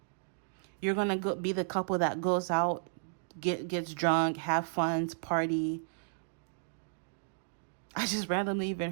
You're going to be the couple that goes out, gets drunk, have fun, party. I just randomly even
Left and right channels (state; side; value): silent; left; digital silence